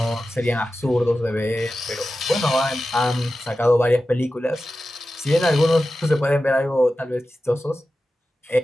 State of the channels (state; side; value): normal; both; correlation 0.93